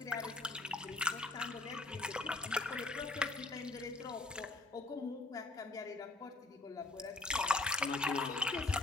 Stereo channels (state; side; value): quieter; right; 3.2 dB